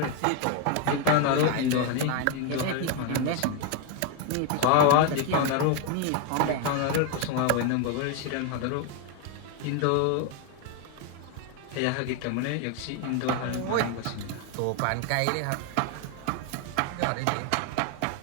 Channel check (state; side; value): different; both; correlation 0.01